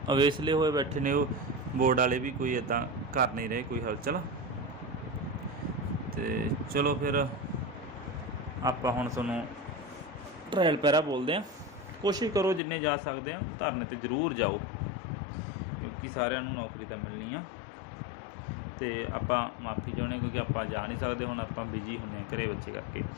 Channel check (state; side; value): drops out; right; at 12.6 s